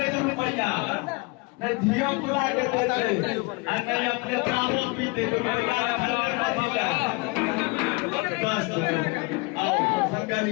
नहीं धियो पुरा के देते नहीं अपने चावल पीते तो आओ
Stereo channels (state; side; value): quieter; right; 27.3 dB